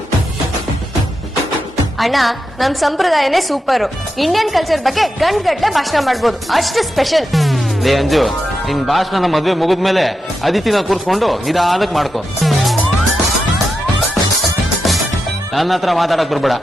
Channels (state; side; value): normal; both; correlation 0.88